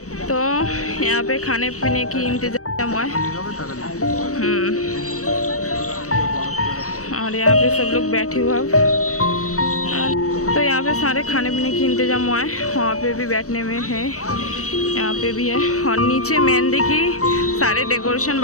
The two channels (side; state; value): right; late; 0.65 ms